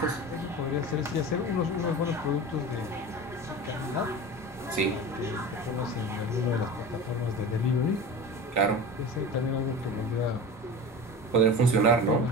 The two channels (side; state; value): both; normal; correlation 0.31